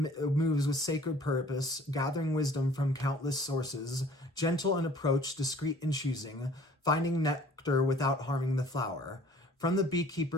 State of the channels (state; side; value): normal; both; correlation 0.53